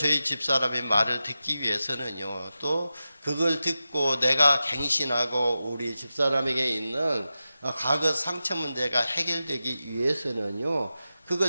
집사람의 말을 듣기 위해서는요, 또 그걸 듣고 내가 갱신하고 우리 집사람에게 있는 과거 상처 문제가 해결되기 위해서는요,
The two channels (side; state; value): both; inverted; correlation -0.93